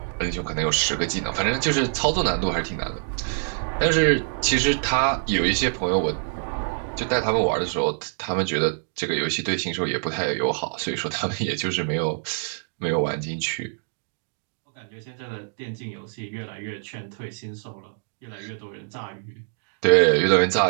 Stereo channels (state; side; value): silent; left; 62 dB below the other